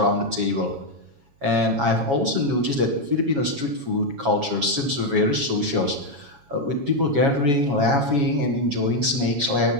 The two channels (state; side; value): late; left; 7.2 ms